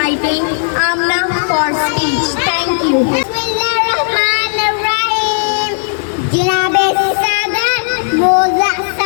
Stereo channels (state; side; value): silent; right; digital silence